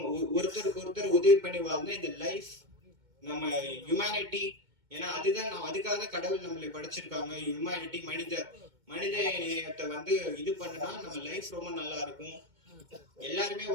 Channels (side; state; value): left; late; 2.2 ms